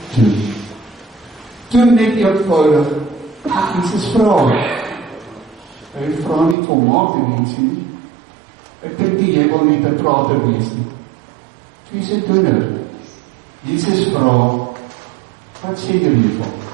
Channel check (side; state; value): left; drops out; at 6.6 s